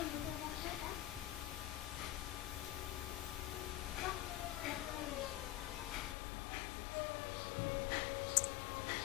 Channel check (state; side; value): drops out; right; at 6.2 s